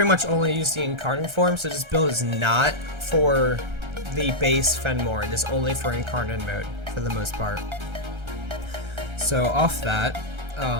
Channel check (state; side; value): late; left; 1.3 ms